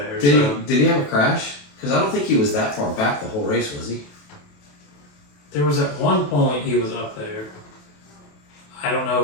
Did he have a crash? Because I don't think he was that far back the whole race, was he? There was at one point he was up there. I don't know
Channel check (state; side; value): late; right; 28 ms